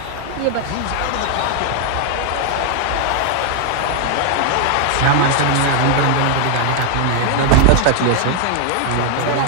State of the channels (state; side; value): different; both; correlation 0.00